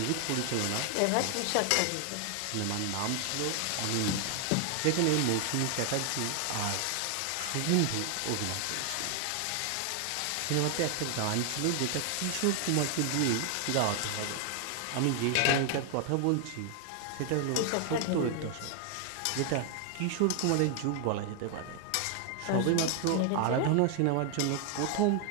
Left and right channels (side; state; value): both; different; correlation 0.00